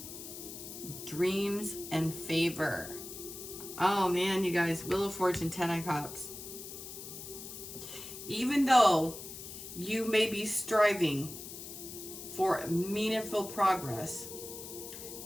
Dreams and favor. Oh man, you guys, Wheel of Fortune, 10 of Cups. Even though you may be striving for meaningful progress,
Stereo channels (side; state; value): left; noise; hiss, 11 dB below the sound